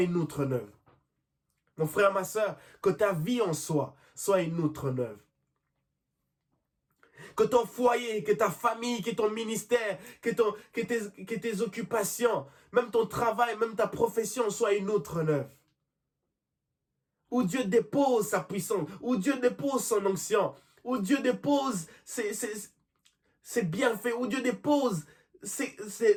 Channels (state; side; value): identical; both; correlation 1.00